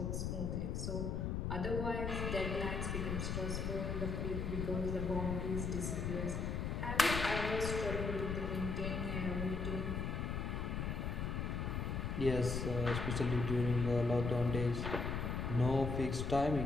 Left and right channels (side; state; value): left; noise; rumble, 1 dB below the sound